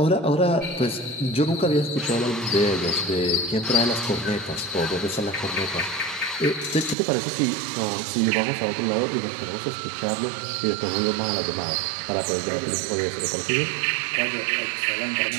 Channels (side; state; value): left; drops out; at 7.0 s